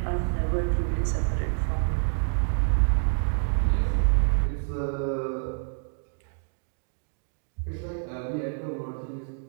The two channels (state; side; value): silent; left; digital silence